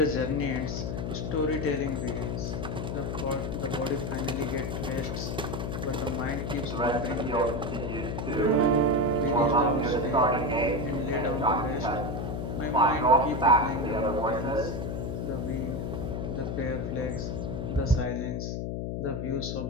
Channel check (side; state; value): left; noise; hum, 3 dB below the sound